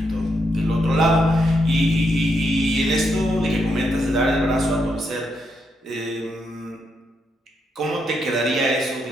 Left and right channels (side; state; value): both; normal; correlation 0.80